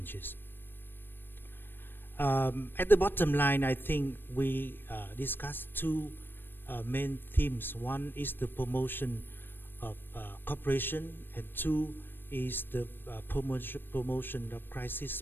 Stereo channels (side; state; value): right; late; 0.096 ms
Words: At the bottom line, I think we discussed two main themes. One is the promotion of cooperation, and two is the promotion of